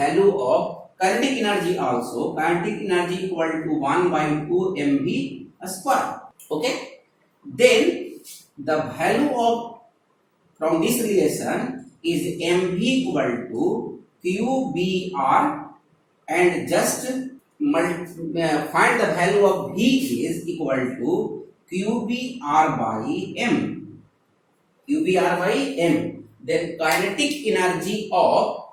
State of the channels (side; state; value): both; identical; correlation 1.00